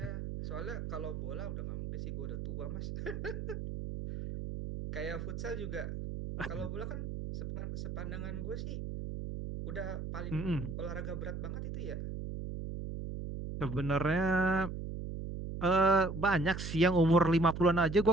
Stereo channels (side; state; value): right; noise; hum, 6 dB below the sound